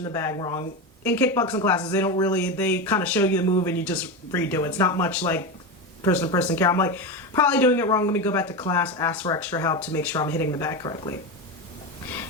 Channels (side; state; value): both; normal; correlation 0.18